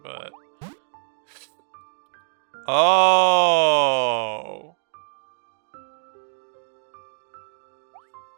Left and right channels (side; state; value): left; silent; digital silence